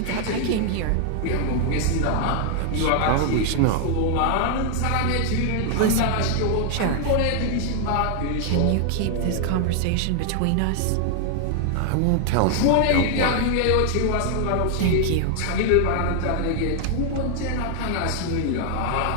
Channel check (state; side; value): different; both; correlation 0.00